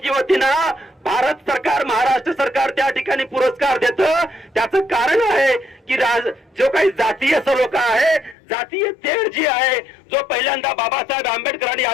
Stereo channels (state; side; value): drops out; right; at 8.3 s